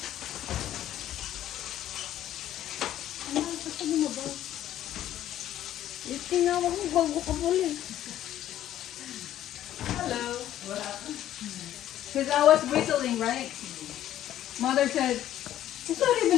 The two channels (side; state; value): right; quieter; 12.3 dB